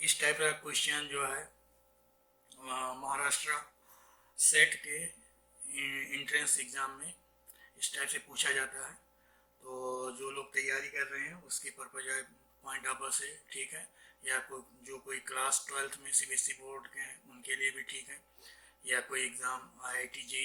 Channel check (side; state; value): both; identical; correlation 1.00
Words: टाइप का क्वेश्चन जो है महाराष्ट्र सेट के इंट्रेंस एग्ज़ाम में इस टाइप से पूछा जाता है। तो जो लोग तैयारी कर रहे हैं उसके पर्पज है, पॉइंट ऑफ व्यू से ठीक है, या जो कोई क्लास 12th में सीबीएसई बोर्ड के हैं उनके लिए भी ठीक है, या कोई एग्ज़ाम आईआईटी